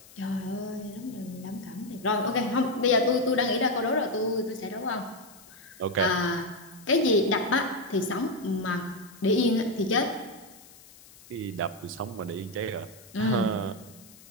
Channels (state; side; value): noise; left; hiss, 22 dB below the sound